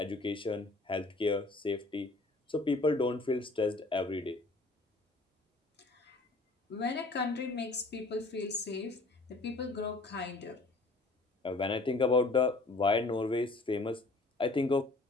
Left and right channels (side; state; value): right; quieter; 3.2 dB